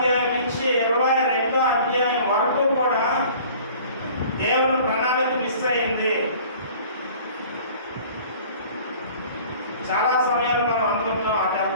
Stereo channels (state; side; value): inverted; both; correlation -0.48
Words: నుంచి 22వ అధ్యాయం వరకు కూడా దేవుని ప్రణాళిక మిస్ అయింది. చాలా సమయాలు మనం అనుకుంటాం, అటు